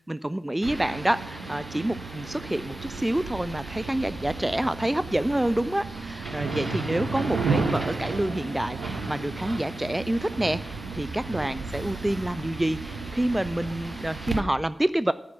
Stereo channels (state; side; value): normal; both; correlation 0.95